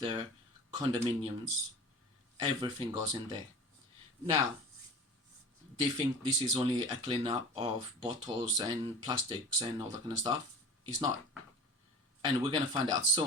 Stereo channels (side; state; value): both; normal; correlation 0.37